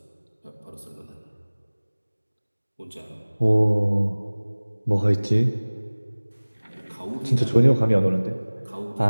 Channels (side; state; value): both; inverted; correlation -1.00